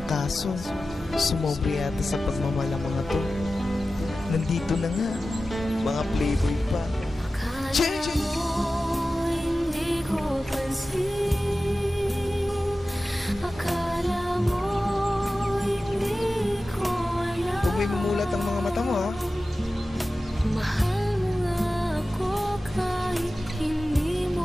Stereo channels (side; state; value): both; normal; correlation 0.95